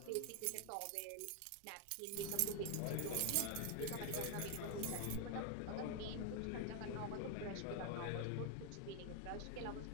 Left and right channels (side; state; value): both; different; correlation 0.00